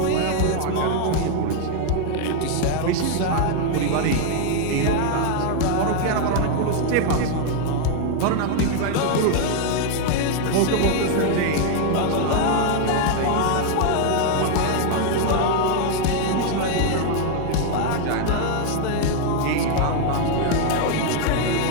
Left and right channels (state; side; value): different; both; correlation 0.00